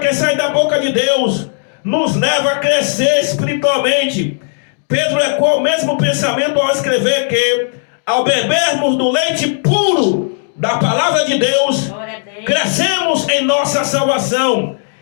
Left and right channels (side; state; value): right; silent; digital silence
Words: sai da boca de Deus nos leva a crescer espiritualmente. Pedro ecoa o mesmo pensamento ao escrever que, ao bebermos do leite puro da palavra de Deus, crescemos em nossa salvação.